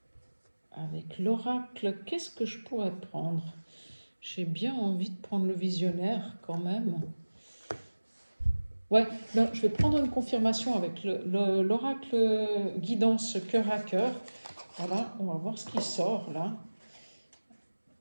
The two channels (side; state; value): both; inverted; correlation -1.00